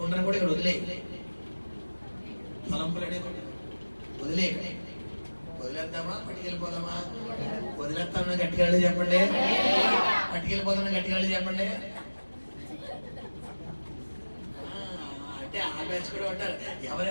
కూడా ఇక్కడ వదిలేయాలి. తలంపులు అనే కొండ వదిలేయాలి. వదిలేద్దామా? పట్టుకెళ్ళిపోదామా? వదిలేస్తామన్నా గట్టిగా చెప్పండి. పట్టుకెళ్ళిపోదామని గట్టిగా చెప్పండి. అంటే ఆ బ్యాచ్ కూడా ఉంటారు. ఎవరి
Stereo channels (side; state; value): both; inverted; correlation -1.00